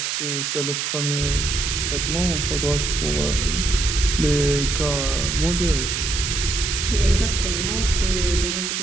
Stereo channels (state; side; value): noise; right; hiss, 1 dB below the sound